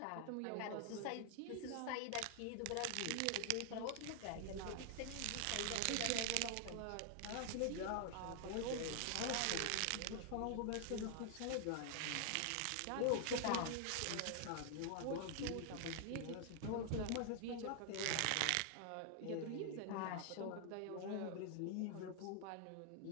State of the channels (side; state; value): both; different; correlation 0.00